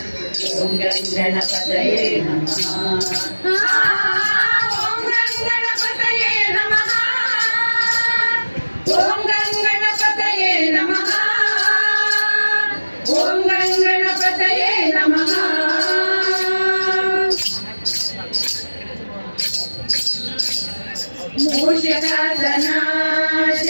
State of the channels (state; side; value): inverted; both; correlation -1.00